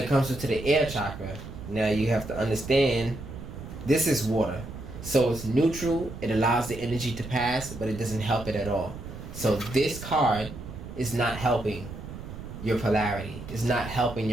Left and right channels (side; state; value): right; noise; rumble, 11 dB below the sound